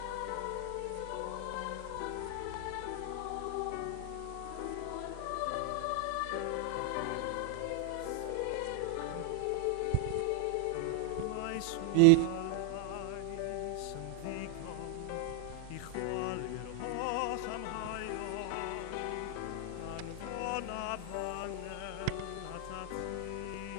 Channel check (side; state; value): both; different; correlation 0.00